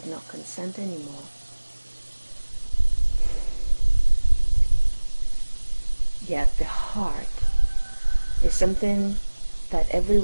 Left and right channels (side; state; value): both; inverted; correlation -1.00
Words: do not consent anymore. Yet the heart is something that every